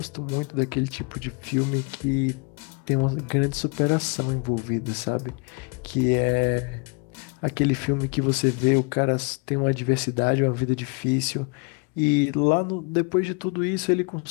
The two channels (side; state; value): right; quieter; 32.5 dB